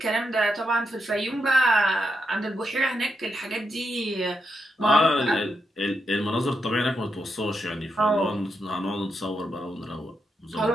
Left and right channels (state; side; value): normal; both; correlation 0.83